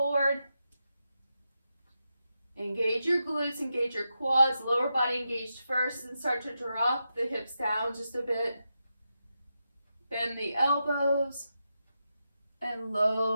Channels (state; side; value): inverted; both; correlation -0.87